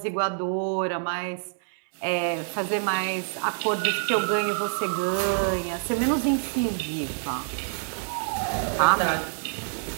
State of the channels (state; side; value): silent; left; 61 dB below the other